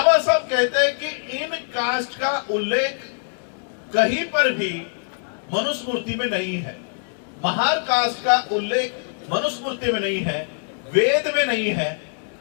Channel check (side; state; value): right; silent; digital silence